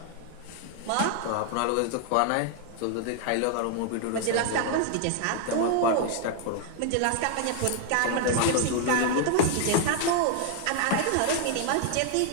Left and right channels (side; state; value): both; different; correlation 0.00